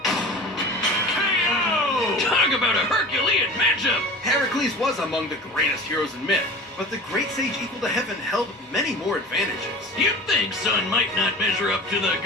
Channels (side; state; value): both; normal; correlation 0.38